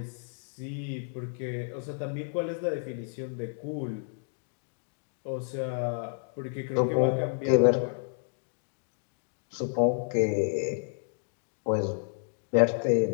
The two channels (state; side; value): silent; right; digital silence